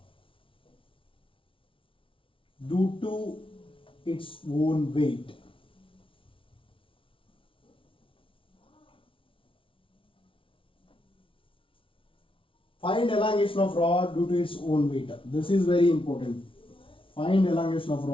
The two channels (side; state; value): right; late; 0.25 ms